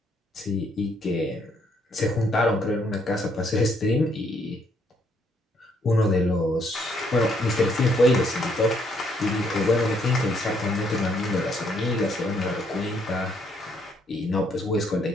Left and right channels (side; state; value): both; normal; correlation 0.70